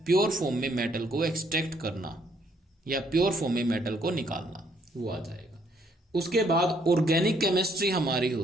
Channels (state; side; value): normal; both; correlation 0.68